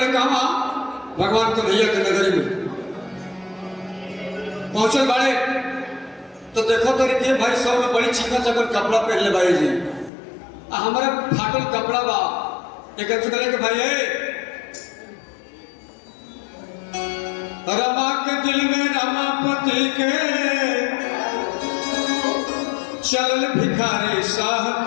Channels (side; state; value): right; drops out; at 10.1 s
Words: कहा भगवान कन्हैया के नगरी में पहुंचल बड़े तो देखो तो के भाई सब में बड़ी चिकन चकन कपड़ा पहन ले भाई जी हमारे फाटल कपड़ा बा एक कहले के भाई रमा के दिल में रमापति के चलल भिखारी